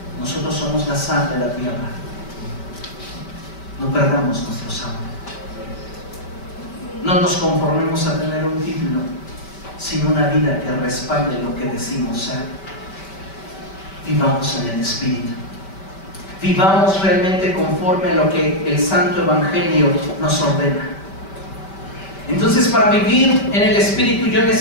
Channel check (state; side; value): late; right; 5.2 ms